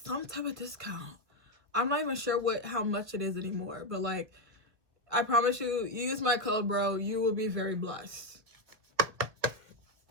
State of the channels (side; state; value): left; late; 1.7 ms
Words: type of discount. I'm not even sure how much it is anymore, but like, I promise you, use my code, bro. You will be very blessed.